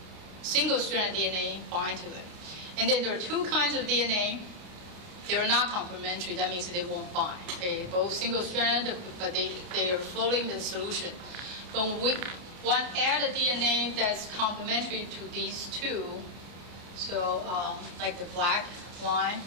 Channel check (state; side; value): late; left; 28 ms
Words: Single strand of DNA bind to it. And then there are two kinds of DNA. They are not complementary. That means they won't bind. Okay, both single strand, but they are floating in the solution. But when one add a DNA that's complementary to these two, so like the black line,